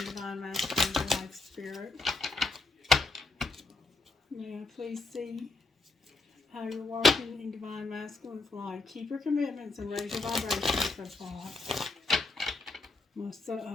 Divine Masculine life, Spirit? May I please see how you're working in Divine Masculine's life? Keep your commitments and raise your vibration so far.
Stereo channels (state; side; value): quieter; right; 3.4 dB